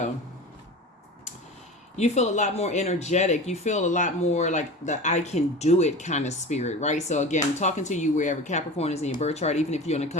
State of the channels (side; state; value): both; normal; correlation 0.33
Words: You feel a lot more energetic. You feel a lot more like the I can do it kind of spirit, right? So again, talking to you wherever Capricorn is in your birth chart, even if you're on the